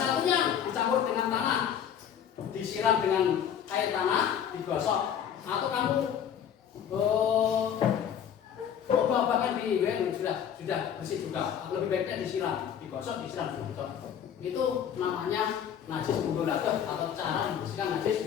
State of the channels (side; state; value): right; quieter; 8.9 dB